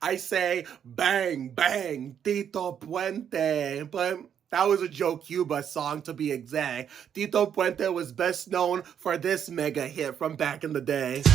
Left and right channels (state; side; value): quieter; left; 8.6 dB